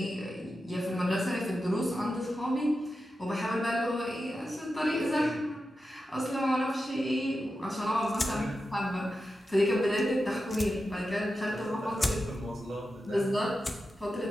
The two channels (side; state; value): both; normal; correlation 0.91